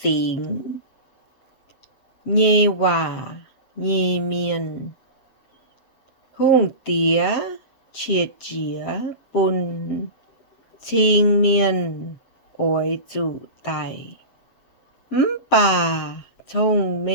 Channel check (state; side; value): late; right; 7.5 ms